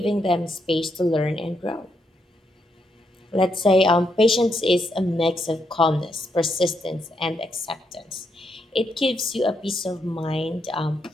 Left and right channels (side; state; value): both; normal; correlation 0.79